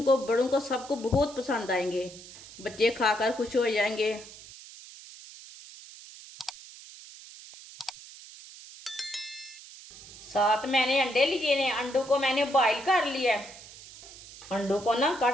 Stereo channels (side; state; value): right; noise; hiss, 17 dB below the sound